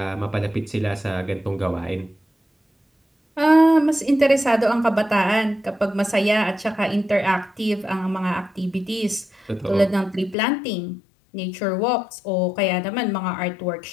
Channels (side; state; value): right; drops out; at 10.4 s